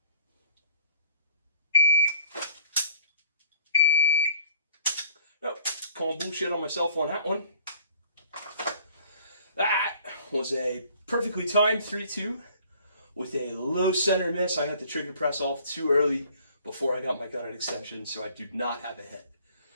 Oh, calling bullshit on myself on that one. That was a perfectly timed 3-2 with a low center miss. I had the trigger press off too early before I got my gun at extension, so I do not have a hit.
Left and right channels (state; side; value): inverted; both; correlation -0.54